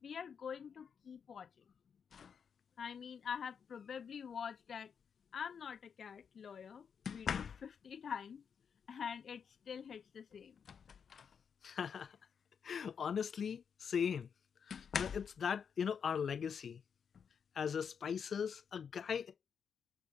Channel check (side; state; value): right; quieter; 6.9 dB